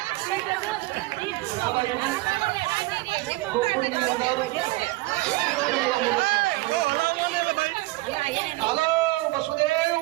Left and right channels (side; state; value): left; quieter; 20.4 dB